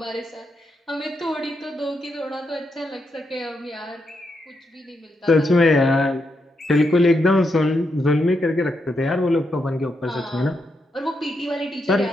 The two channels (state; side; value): normal; both; correlation 0.82